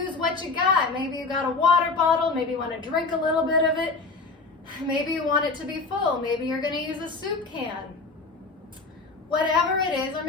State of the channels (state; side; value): quieter; right; 3.8 dB